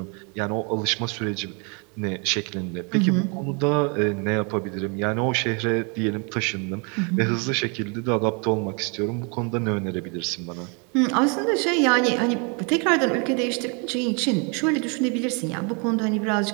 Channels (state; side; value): quieter; left; 34.6 dB